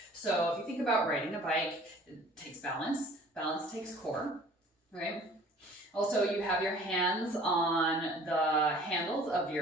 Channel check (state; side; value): normal; both; correlation 0.50